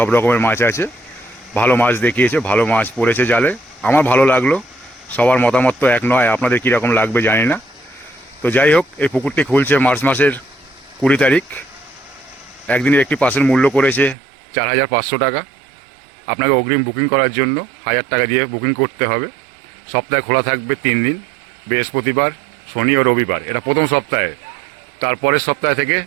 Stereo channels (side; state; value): left; drops out; at 14.2 s